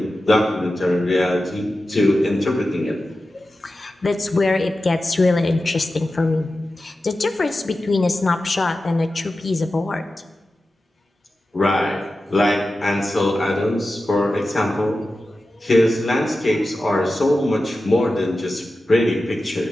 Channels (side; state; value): both; normal; correlation 0.93